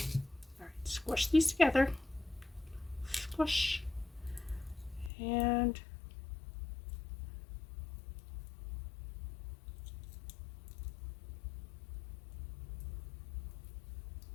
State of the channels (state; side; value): drops out; right; at 5.1 s